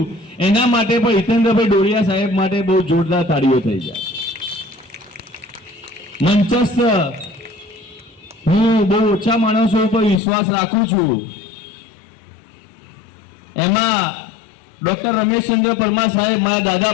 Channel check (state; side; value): drops out; right; at 10.2 s